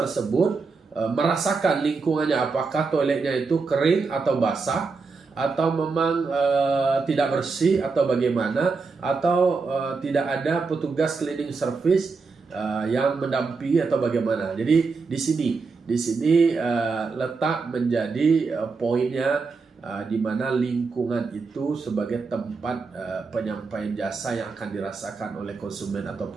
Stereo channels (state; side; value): quieter; left; 4.5 dB